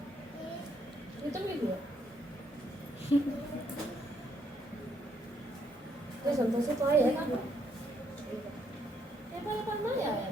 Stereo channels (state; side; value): normal; both; correlation 0.72